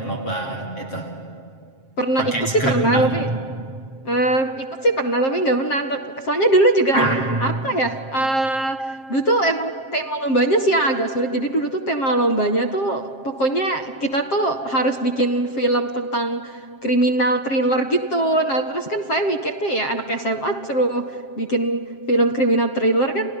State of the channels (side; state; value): right; late; 7.5 ms